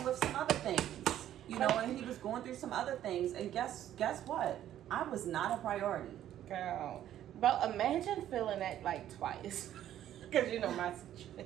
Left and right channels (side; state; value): left; quieter; 11.7 dB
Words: with some other things, you know, and he was going through some other things. And guess what? I was not a priority. Girl. But imagine feeling that like twice. Because you know my